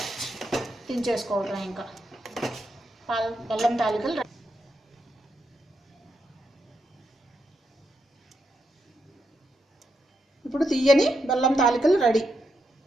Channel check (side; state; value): both; normal; correlation 0.83